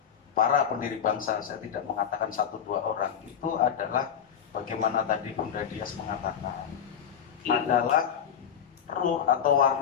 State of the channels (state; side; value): quieter; right; 8.4 dB